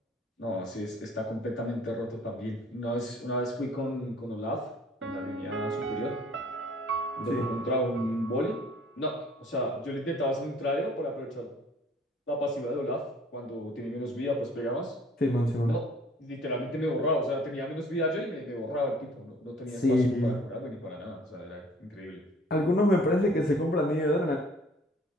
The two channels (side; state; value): both; normal; correlation 0.55